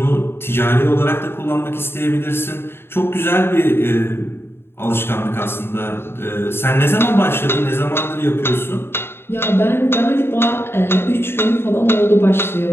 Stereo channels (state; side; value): late; right; 0.11 ms